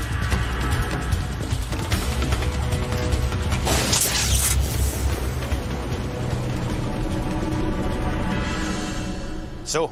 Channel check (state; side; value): identical; both; correlation 1.00